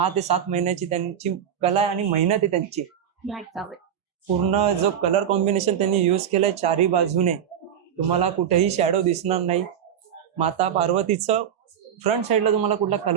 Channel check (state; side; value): quieter; left; 9.1 dB